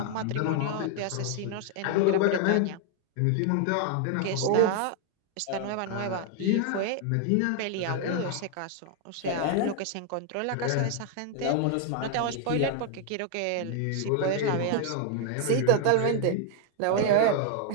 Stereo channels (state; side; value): different; both; correlation 0.00